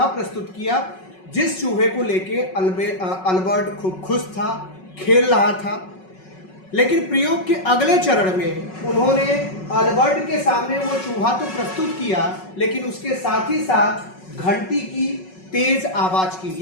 प्रस्तुत किया, जिस चूहे को लेके अल्बर्ट खूब खुश था, खेल रहा था। लेकिन प्रयोग के अगले चरण में उन्होंने अल्बर्ट के सामने वो चूहा तो प्रस्तुत किया, लेकिन उसके साथ ही साथ घंटी की तेज आवाज की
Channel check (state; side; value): late; right; 5.4 ms